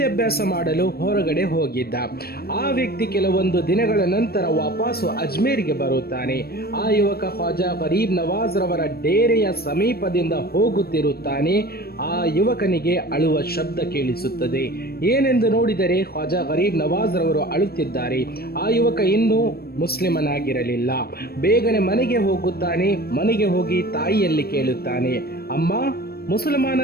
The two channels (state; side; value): late; right; 0.45 ms